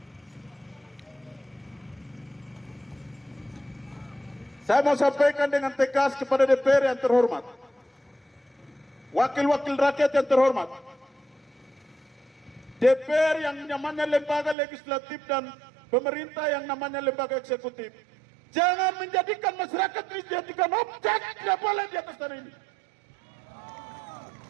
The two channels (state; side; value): drops out; left; at 14.6 s